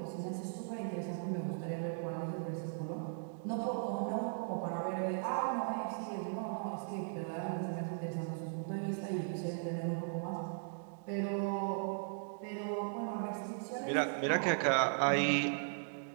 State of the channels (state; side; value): silent; left; digital silence